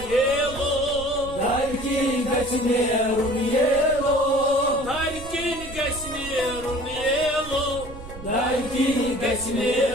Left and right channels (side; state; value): right; noise; rumble, 14 dB below the sound